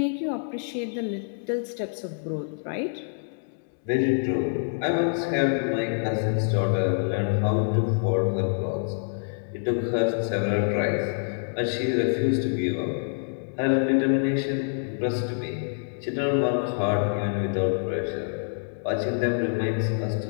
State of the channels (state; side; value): silent; right; digital silence